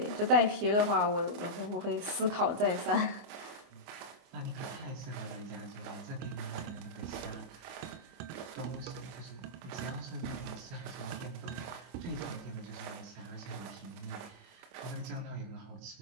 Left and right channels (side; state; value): left; late; 24 ms